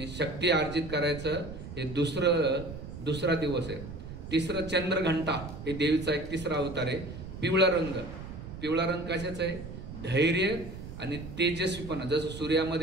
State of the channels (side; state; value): right; noise; rumble, 11 dB below the sound